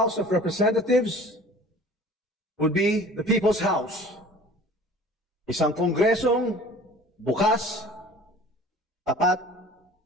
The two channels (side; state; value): both; normal; correlation 0.45